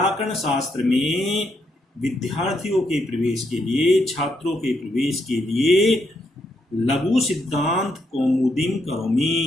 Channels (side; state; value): both; normal; correlation 0.77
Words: शास्त्र में विद्यार्थियों के प्रवेश के लिए, छात्रों के प्रवेश के लिए लघु सिद्धांत कौमुदीं